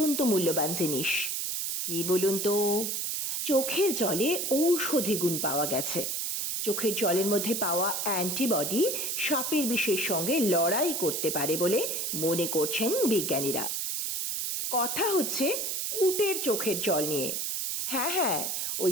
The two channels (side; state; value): right; noise; hiss, 1 dB below the sound